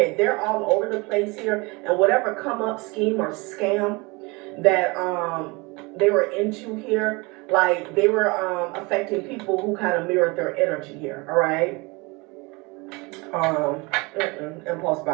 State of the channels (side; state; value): left; quieter; 26.5 dB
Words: they're all over the place here. And whatever come up scheme or scam that they were into here, like they were affecting people who kind of mirrored their energy here. All right. Impulse